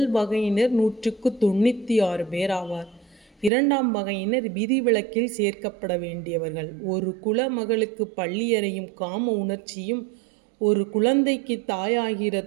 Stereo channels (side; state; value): left; drops out; at 3.5 s